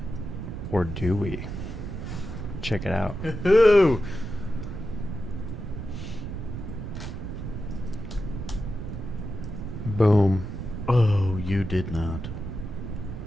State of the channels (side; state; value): right; noise; rumble, 7 dB below the sound